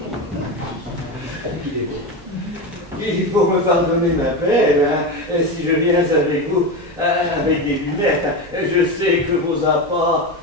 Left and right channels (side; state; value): both; normal; correlation 0.19